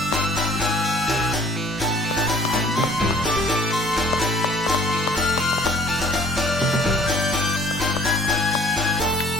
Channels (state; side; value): normal; both; correlation 0.55